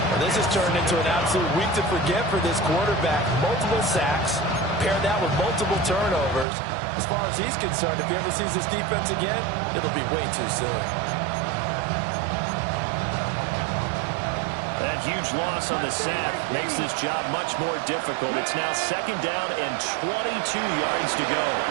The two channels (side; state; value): left; drops out; at 6.5 s